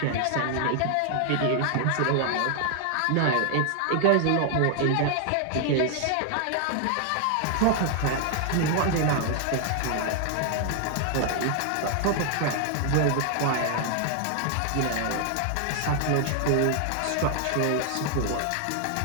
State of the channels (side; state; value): both; different; correlation 0.00